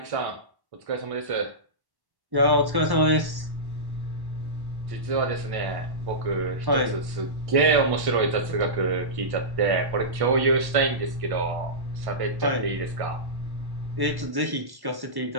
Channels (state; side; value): late; left; 1.1 ms